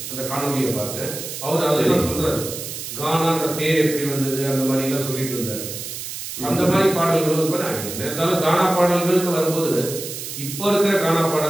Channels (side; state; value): right; noise; hiss, 8 dB below the sound